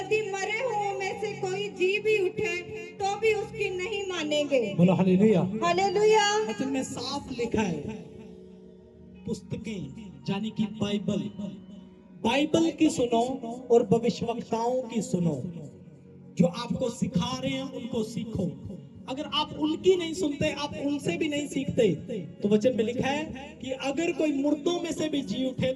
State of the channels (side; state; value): both; identical; correlation 1.00